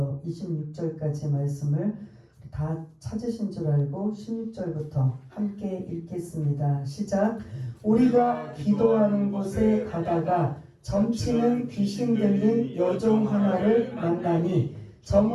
26절까지 말씀을 다 찾으신 줄 알고 16절부터 함께 읽겠습니다. 시작. 우리가 기도하는 곳에 가다가 점치는 귀신 들린 여종 하나를 만나니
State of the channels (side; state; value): both; identical; correlation 1.00